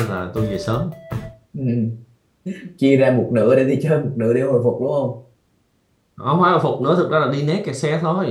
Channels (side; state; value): both; identical; correlation 1.00